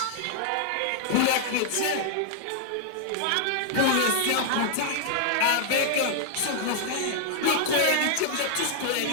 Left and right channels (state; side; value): different; both; correlation -0.01